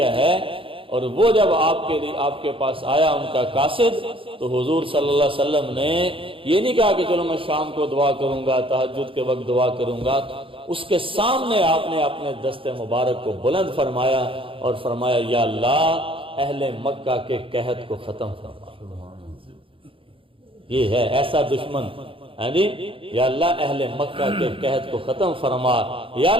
ہے، اور وہ جب آپ کے پاس آیا ان کا قاصد، تو حضور صلی اللہ علیہ وسلم نے یہ نہیں کہا کہ چلو میں شام کو دعا کروں گا، تہجد کے وقت دعا کروں گا. اس کے سامنے آپ نے اپنے دست مبارک کو بلند فرمایا اور فرمایا یا اللہ اہل مکہ کے قحط کو ختم فرما. یہ ہے ایسا دشمن، یا اللہ اہل مکہ کے قحط کو ختم فرما، یا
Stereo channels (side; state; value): left; late; 0.26 ms